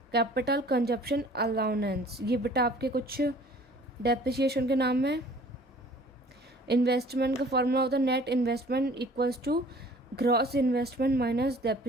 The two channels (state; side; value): normal; both; correlation 0.51